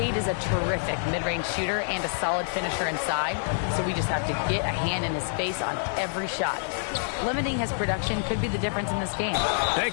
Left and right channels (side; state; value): right; silent; digital silence